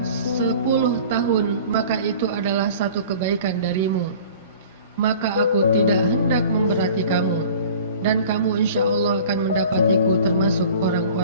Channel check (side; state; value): both; inverted; correlation -0.45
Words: 10 tahun, maka itu adalah satu kebaikan darimu. Maka aku tidak hendak memberati kamu, dan kamu insya Allah akan mendapatiku termasuk